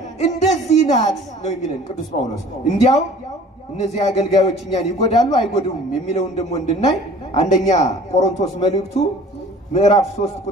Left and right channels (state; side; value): normal; both; correlation 0.48